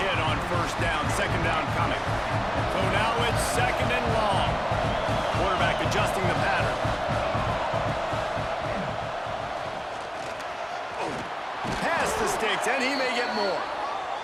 on first down. Second down coming. So now it's second and long. Quarterback adjusting the pattern. Pass the sticks, and he may get more.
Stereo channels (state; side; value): identical; both; correlation 1.00